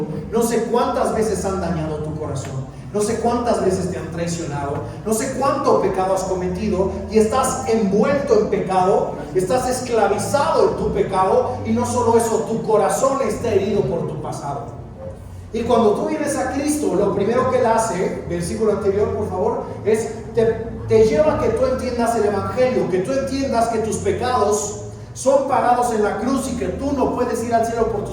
no sé cuántas veces han dañado tu corazón, no sé cuántas veces te han traicionado, no sé cuánto pecado has cometido y estás envuelto en pecado, estás esclavizado en tu pecado y no solo eso, tu corazón está herido por tu pasado. Y cuando tú vienes a Cristo, lo primero que Él hace, versículo anterior por favor, es te lleva a que tú entiendas el Evangelio, que tú entiendas que tus pecados son pagados en la cruz y que tú no puedes ir al cielo por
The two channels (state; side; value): identical; both; correlation 1.00